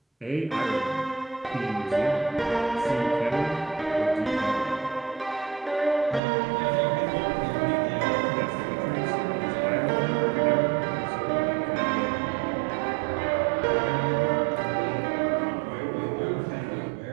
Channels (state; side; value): drops out; left; at 6.2 s